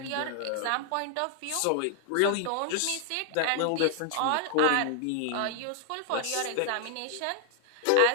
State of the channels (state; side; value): different; both; correlation 0.00